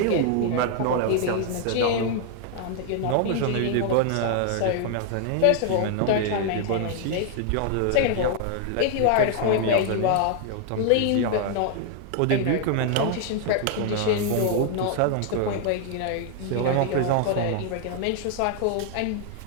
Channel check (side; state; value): both; different; correlation 0.00